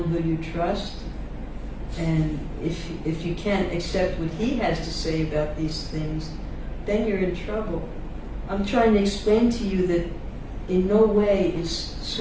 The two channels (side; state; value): both; identical; correlation 1.00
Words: who you trust, and if you can't accept what he has to say about these things, then you're in trouble. I'm trying to explain to you that in no way is